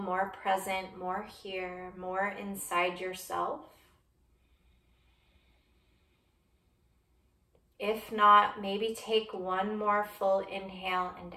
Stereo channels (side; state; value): both; identical; correlation 1.00